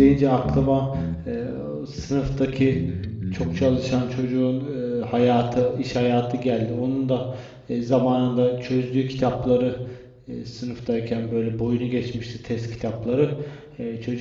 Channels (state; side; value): identical; both; correlation 1.00